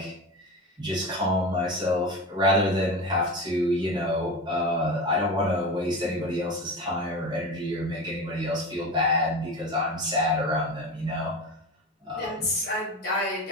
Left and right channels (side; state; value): both; normal; correlation 0.26